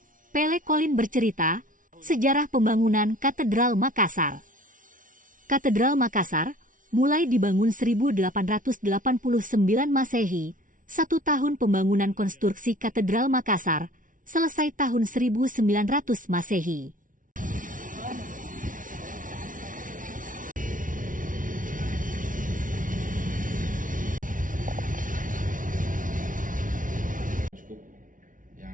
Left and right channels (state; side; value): late; left; 0.38 ms